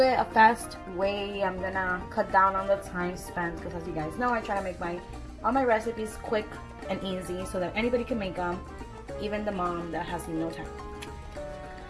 it a fast way. I'm gonna cut down on the time spent because, as you guys know, I try to make all my recipes quick and easy so that anybody can make them, even the mom that has no time.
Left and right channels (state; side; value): identical; both; correlation 1.00